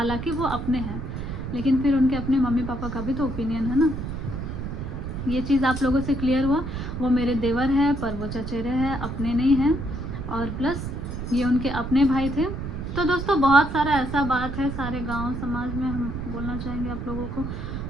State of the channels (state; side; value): noise; right; rumble, 6 dB below the sound